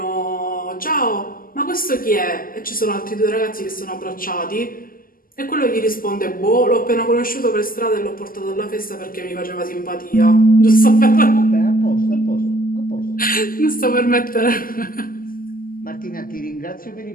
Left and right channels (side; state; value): right; late; 0.42 ms